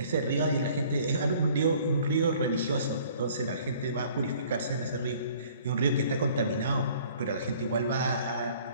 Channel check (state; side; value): inverted; both; correlation -0.55